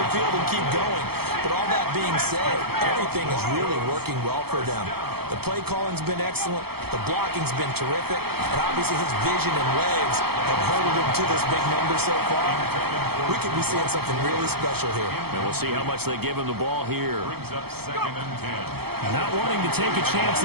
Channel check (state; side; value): late; left; 0.96 ms